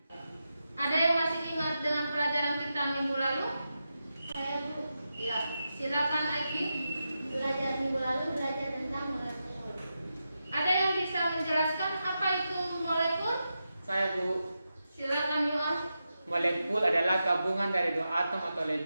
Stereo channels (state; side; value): inverted; both; correlation -0.89